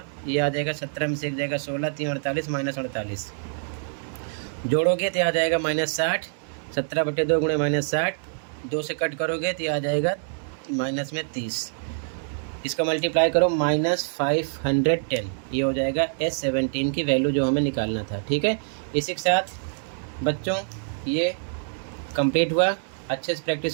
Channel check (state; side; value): silent; left; digital silence